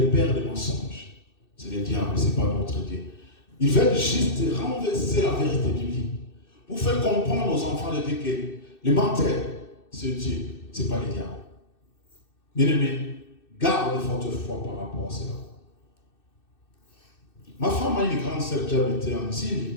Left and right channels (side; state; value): right; late; 2.6 ms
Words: pères des mensonges, c'est le diable, ce n'est pas notre Dieu. Ils veulent juste renverser la vérité biblique pour faire comprendre aux enfants de Dieu que le menteur, c'est Dieu, ce n'est pas le diable. Bien-aimés, garde votre foi par rapport à cela. Ma femme a une grande sœur qui habitait en